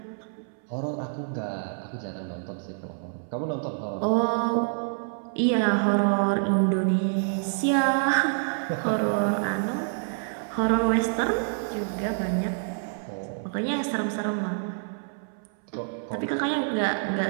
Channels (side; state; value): left; silent; 60 dB below the other